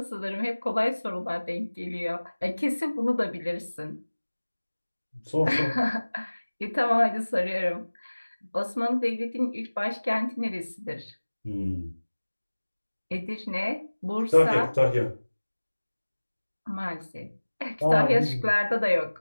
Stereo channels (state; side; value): inverted; both; correlation -1.00